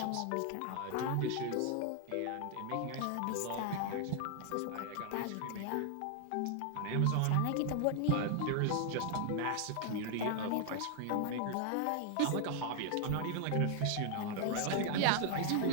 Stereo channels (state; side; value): different; both; correlation 0.00